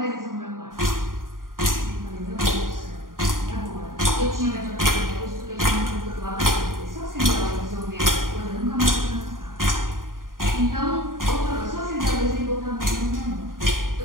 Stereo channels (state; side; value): late; left; 0.90 ms